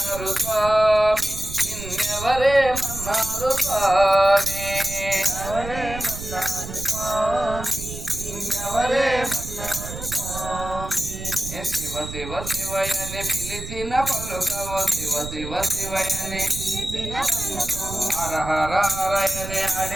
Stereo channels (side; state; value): right; noise; rumble, 9 dB below the sound